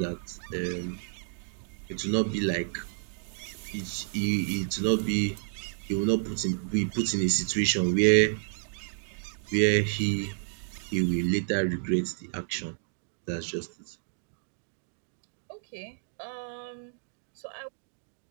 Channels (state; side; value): silent; left; digital silence